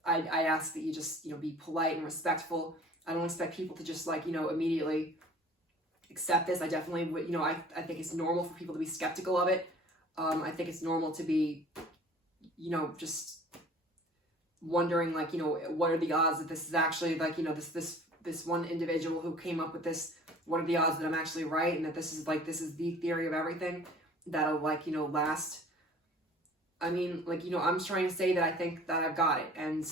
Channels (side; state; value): both; normal; correlation 0.48